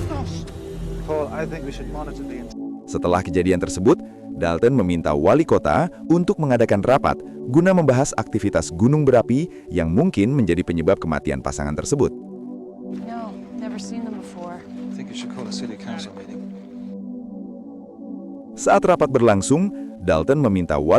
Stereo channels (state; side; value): identical; both; correlation 1.00